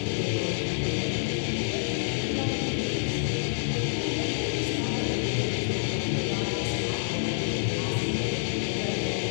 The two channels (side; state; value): right; silent; 60 dB below the other